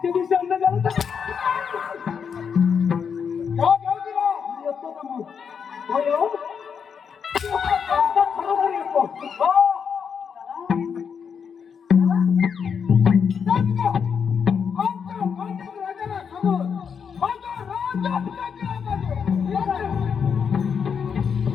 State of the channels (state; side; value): quieter; right; 6.7 dB